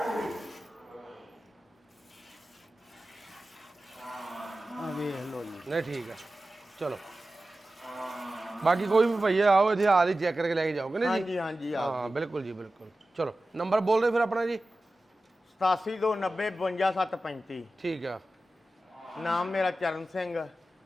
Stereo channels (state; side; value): normal; both; correlation 0.94